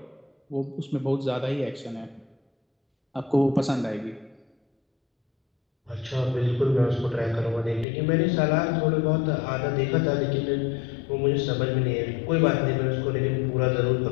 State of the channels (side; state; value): right; drops out; at 7.9 s